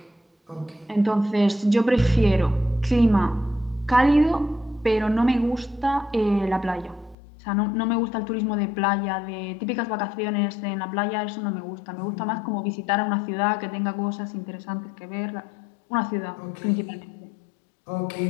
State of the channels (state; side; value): drops out; right; at 7.2 s